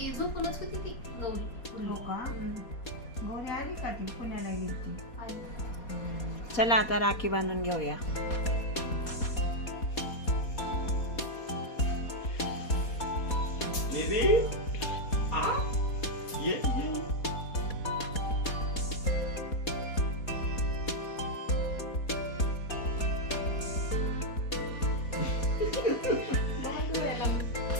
झोपूनच होती ती गौरी. गौरी आली का? ती पुण्याला गेली. चला आता राखी बांधून घेऊया.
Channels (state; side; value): late; right; 4.2 ms